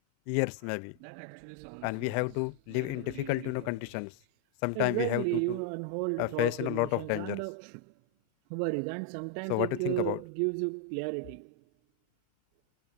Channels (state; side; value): different; both; correlation 0.00